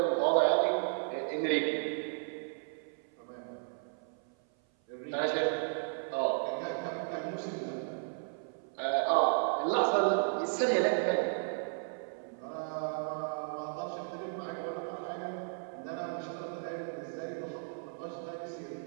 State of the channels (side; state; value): left; silent; 55 dB below the other